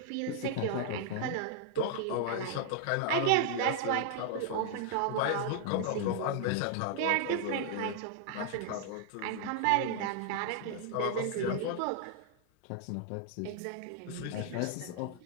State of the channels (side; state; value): both; different; correlation 0.00